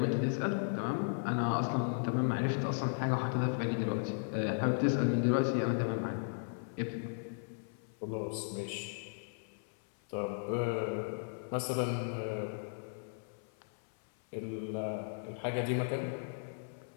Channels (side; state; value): right; silent; 54 dB below the other